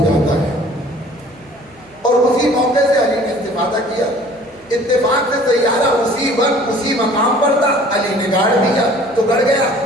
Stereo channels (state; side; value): noise; right; hum, 29 dB below the sound